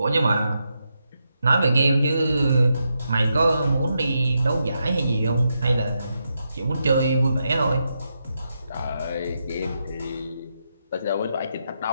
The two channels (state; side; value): inverted; both; correlation -0.84